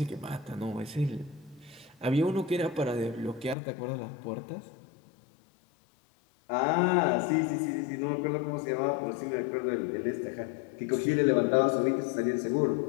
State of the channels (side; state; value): right; drops out; at 3.6 s